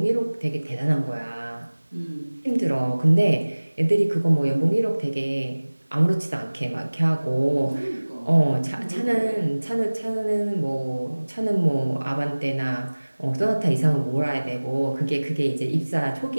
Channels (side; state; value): both; inverted; correlation -1.00